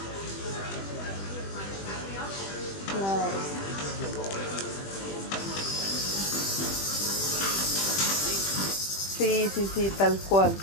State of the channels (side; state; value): right; late; 20 ms